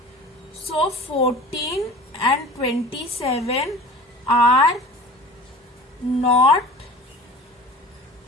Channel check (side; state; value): both; normal; correlation 0.40